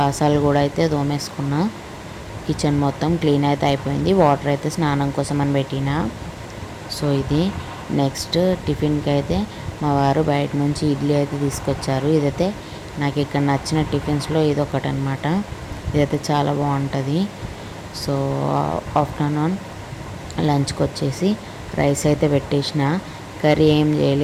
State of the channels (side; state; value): both; identical; correlation 1.00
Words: కూడా అయితే దోమేసుకున్నా. కిచెన్ మొత్తం క్లీన్ అయితే అయిపోయింది. వాటర్ అయితే స్నానం కోసం అని పెట్టిన. సో ఇది నెక్స్ట్ టిఫిన్కి అయితే మా వారు బయట నుంచి ఇడ్లీ అయితే తీసుకొచ్చారు. ఇదైతే నాకు ఇక్కడ నచ్చిన టిఫిన్స్లో ఇదొకటి అనమాట. ఇదైతే చాలా బాగుంటుంది. సో ఆఫ్టర్నూన్ లంచ్కి వచ్చేసి రైస్ అయితే పెట్టేసిన. కర్రీ ఏం